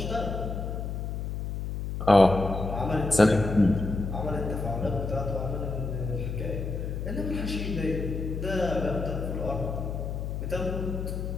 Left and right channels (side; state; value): left; noise; hum, 4 dB below the sound